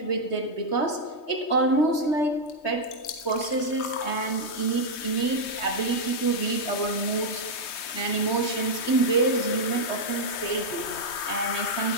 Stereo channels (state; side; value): late; right; 3.2 ms